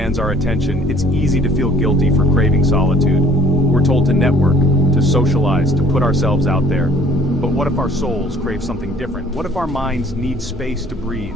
our attention, it's easy to feel guilty for craving solitude. We're told to network, to socialize, to put ourselves out there. But what if our souls crave something different? What if our minds need space to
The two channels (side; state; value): both; normal; correlation 0.56